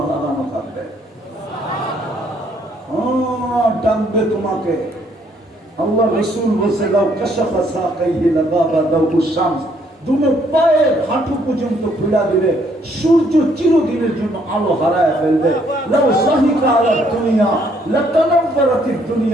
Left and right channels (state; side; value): normal; both; correlation 0.68